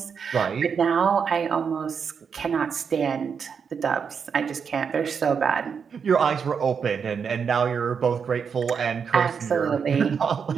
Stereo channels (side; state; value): left; quieter; 6.4 dB